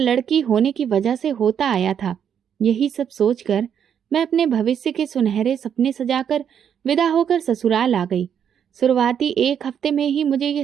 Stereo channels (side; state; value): left; quieter; 8.4 dB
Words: होने की वजह से होता आया था। यही सब सोचकर मैं अपने भविष्य के सुनहरे सपने सजाकर विदा होकर ससुराल आ गई। शुरुआती एक हफ्ते में ही मुझे